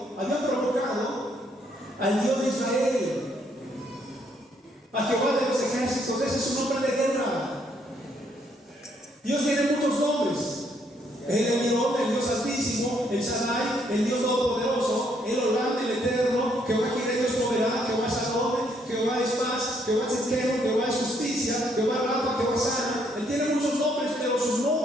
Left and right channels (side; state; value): both; normal; correlation 0.71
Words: habían provocado al Dios de Israel, a Jehová de los ejércitos. Ese es un nombre de guerra. Dios tiene muchos nombres: el Elión, el Dios Altísimo, el Shaddai, el Dios Todopoderoso, el Olam, el Eterno, Jehová Jireh, Dios proveerá, Jehová Shalom, Jehová es paz, Jehová es Tzidkenu, Jehová es justicia, Jehová Rafa, Jehová sana. Él tiene muchos nombres, pero su